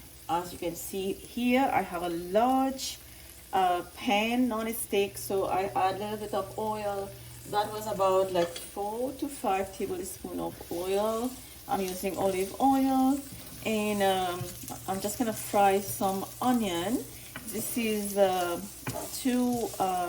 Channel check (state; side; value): identical; both; correlation 1.00